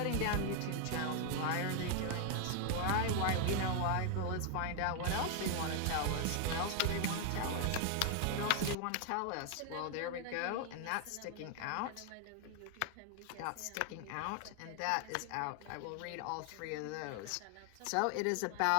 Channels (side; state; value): both; different; correlation 0.00